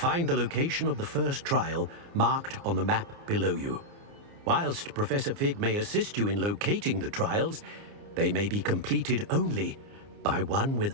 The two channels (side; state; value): left; late; 29 ms